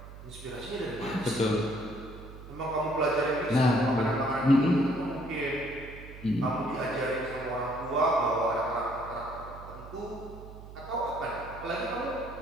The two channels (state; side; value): noise; right; hum, 15 dB below the sound